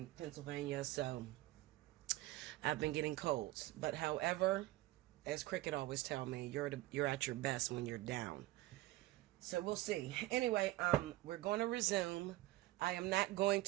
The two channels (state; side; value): quieter; left; 17.4 dB